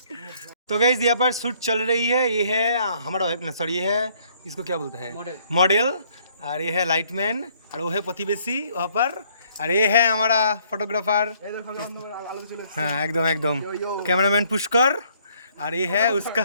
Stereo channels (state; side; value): inverted; both; correlation -0.64